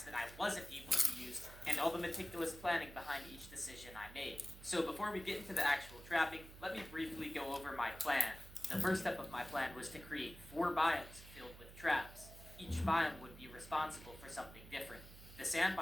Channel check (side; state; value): right; noise; hum, 16 dB below the sound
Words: that I wasn't able to use, and all the meticulous planning behind each decision I made. So before we get into the actual trapping, let me briefly go over my plan. The first step of my plan was to create 4 biomes filled with traps. Each biome would be responsible for something different. The sand